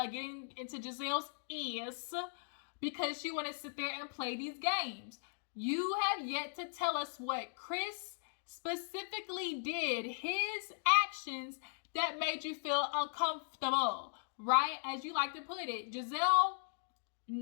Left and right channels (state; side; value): silent; right; digital silence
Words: ears because she wanted to sit there and play these games. You have yet to tell us what Chris specifically did, his actions that made you feel uncomfortable, right? As you like to put it, Gizelle